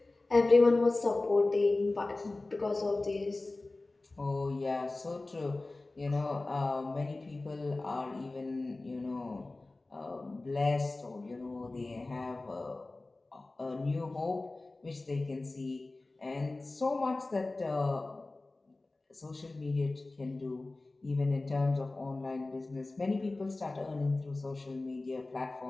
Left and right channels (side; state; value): right; quieter; 3.1 dB